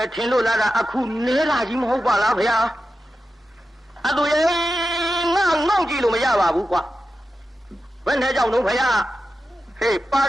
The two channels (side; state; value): both; normal; correlation 0.92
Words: ယ်ထင်လို့လားအခုနဲတာကြီးမဟုတ်ပါလားဗျာအသူရိမ့်ငါငုံကြည့်လို့မရပါဘူးကွာဘယ်နဲ့ကြောင့်တော့ဘုရားဟေးပါ